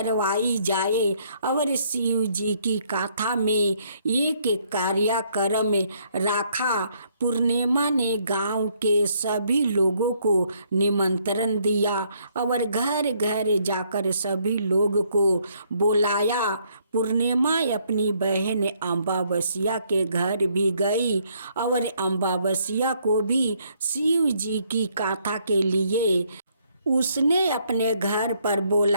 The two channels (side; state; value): both; inverted; correlation -0.69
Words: जाए और शिव जी की कथा में एक कार्यक्रम रखा। पूर्णिमा ने गांव के सभी लोगों को निमंत्रण दिया और घर घर जाकर सभी लोगों को बुलाया। पूर्णिमा अपनी बहन अमावस्या के घर भी गई और अमावस्या को भी शिव जी की कथा के लिए उसने अपने घर पर